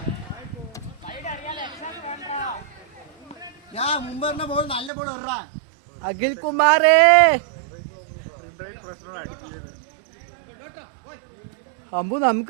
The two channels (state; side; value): drops out; left; at 4.9 s